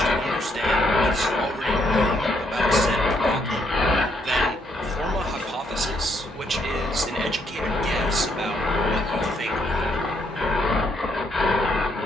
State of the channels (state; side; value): normal; both; correlation 0.73